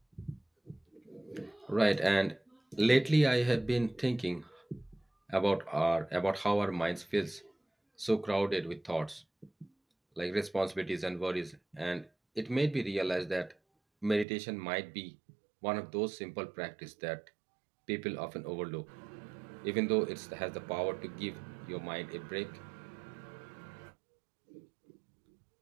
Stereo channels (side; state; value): left; drops out; at 14.2 s